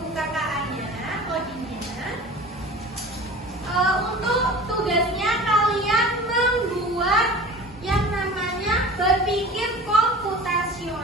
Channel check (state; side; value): normal; both; correlation 0.38